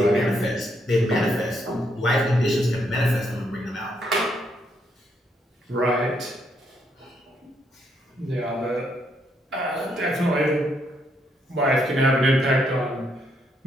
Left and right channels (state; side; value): normal; both; correlation 0.75